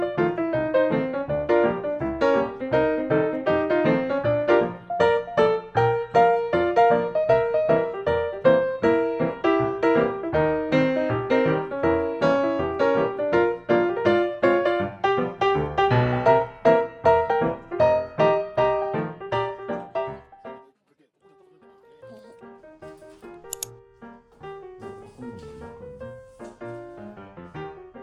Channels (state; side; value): identical; both; correlation 1.00